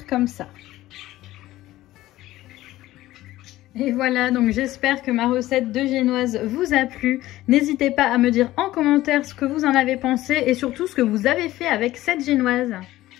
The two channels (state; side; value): quieter; right; 15.9 dB